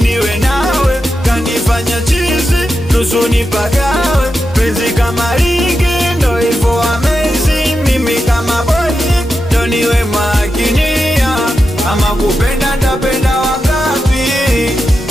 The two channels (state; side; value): normal; both; correlation 0.89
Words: nawe. Kanifanya chizi nusu nipagawe, penzi kama ligi ndo hivyo amazing. Mimi kama boy ndo niwe makinia, ama kupenda ndapenda wangapi,